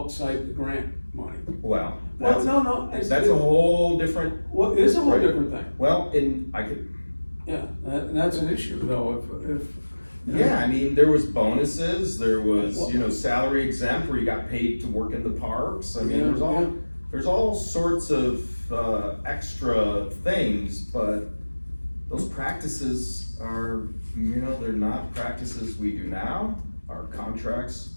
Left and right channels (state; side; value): inverted; both; correlation -1.00